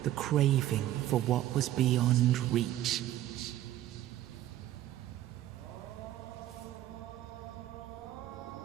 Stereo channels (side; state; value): left; quieter; 13.5 dB